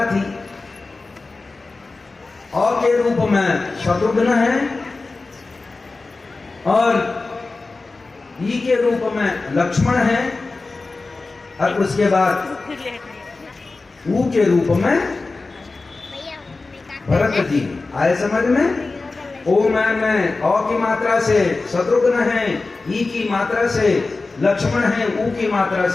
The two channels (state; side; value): quieter; right; 3.7 dB